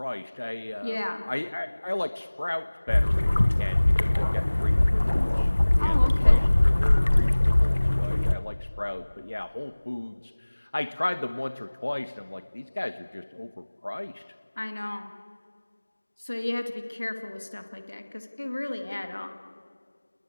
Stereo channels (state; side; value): inverted; both; correlation -1.00